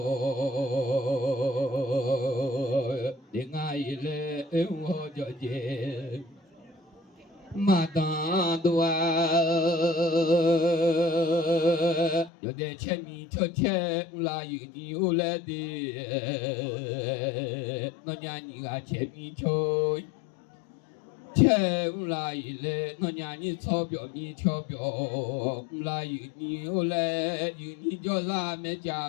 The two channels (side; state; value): right; drops out; at 12.3 s